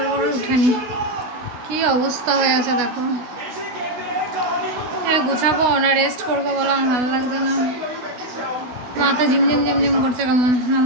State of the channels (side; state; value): left; late; 16 ms